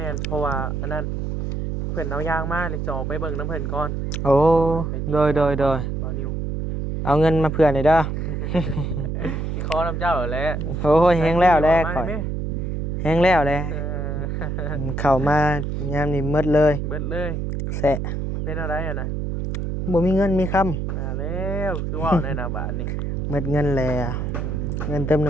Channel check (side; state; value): right; noise; hum, 2 dB below the sound